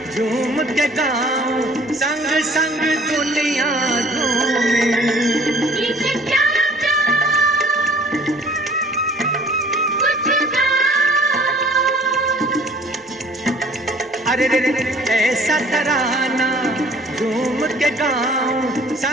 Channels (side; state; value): both; normal; correlation 0.52